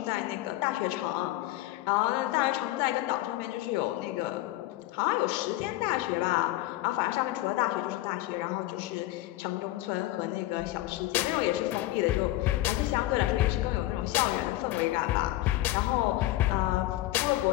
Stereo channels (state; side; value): quieter; right; 16.6 dB